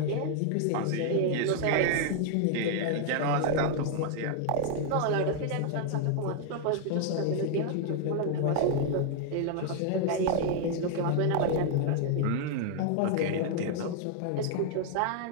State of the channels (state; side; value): different; both; correlation 0.00